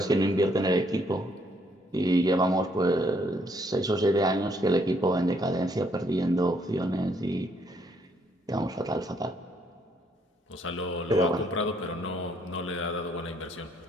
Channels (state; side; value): normal; both; correlation 0.69